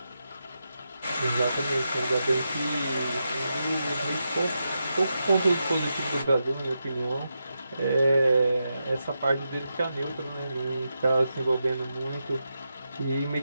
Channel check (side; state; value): both; inverted; correlation -0.87